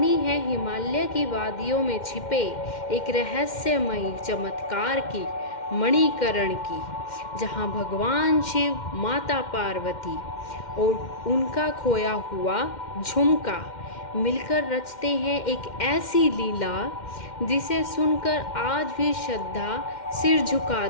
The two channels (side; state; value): right; late; 2.1 ms